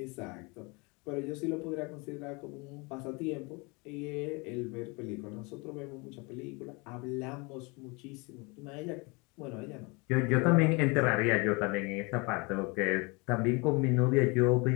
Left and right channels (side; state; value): right; quieter; 28.5 dB